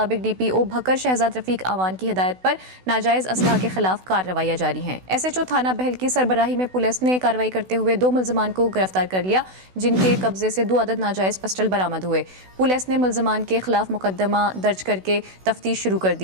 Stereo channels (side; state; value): left; late; 16 ms